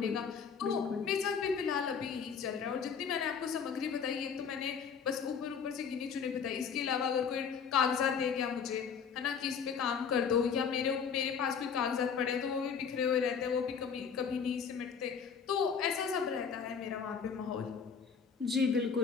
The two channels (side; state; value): right; quieter; 6.5 dB